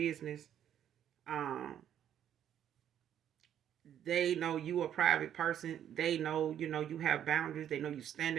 They know you a private person. They know, you have boundaries. They know you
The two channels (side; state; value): left; quieter; 10.1 dB